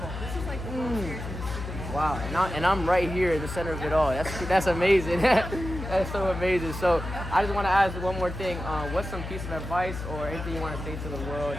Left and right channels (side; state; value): left; noise; hum, 8 dB below the sound